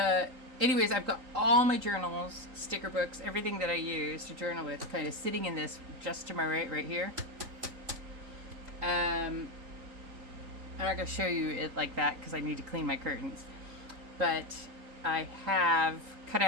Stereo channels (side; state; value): left; late; 3.9 ms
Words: anyways, I've got all my journals, sticker books, everything that I use to journal with, kind of sitting in this just to my right here. I'm not going to show you it like that because I need to clean my curtains. But I have cut